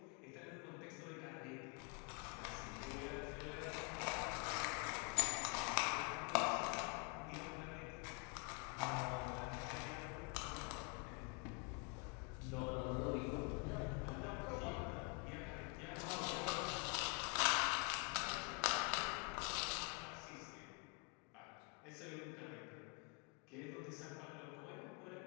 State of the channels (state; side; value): quieter; right; 34.7 dB